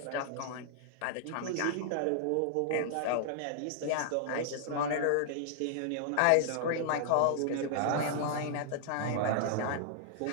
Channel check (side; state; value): both; different; correlation -0.01